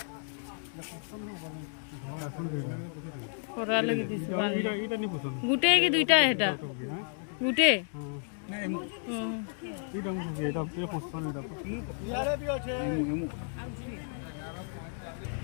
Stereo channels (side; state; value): right; silent; 56 dB below the other